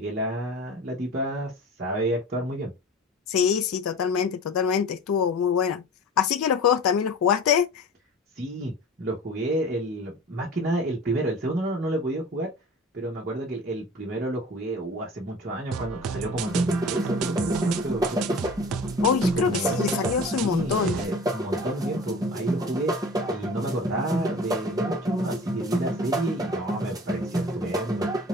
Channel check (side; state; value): both; normal; correlation 0.39